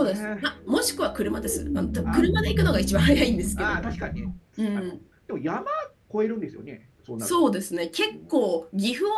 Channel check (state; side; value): identical; both; correlation 1.00